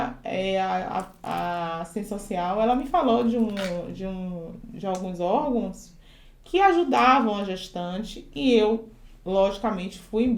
a assistência social, ela me falou de alguns órgãos que ajudavam a gestante e eu, logicamente, fui em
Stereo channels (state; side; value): identical; both; correlation 1.00